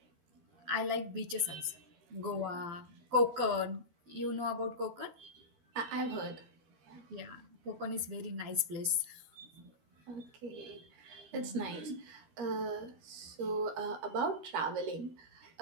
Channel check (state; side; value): late; left; 12 ms